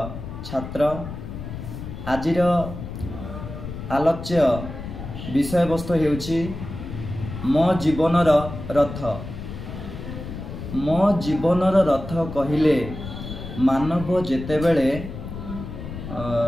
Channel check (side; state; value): left; noise; rumble, 9 dB below the sound